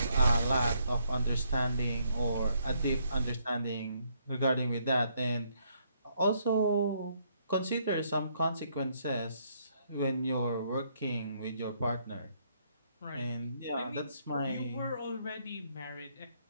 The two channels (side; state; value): both; inverted; correlation -0.71